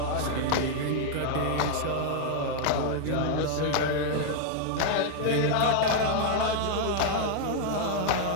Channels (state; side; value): different; both; correlation 0.00